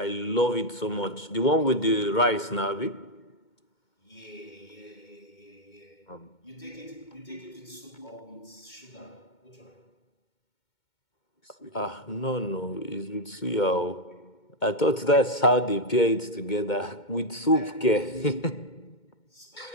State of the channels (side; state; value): right; late; 2.2 ms